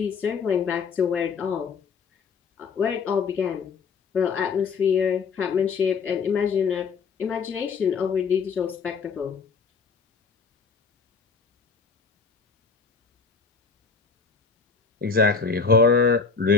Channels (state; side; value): quieter; right; 5.3 dB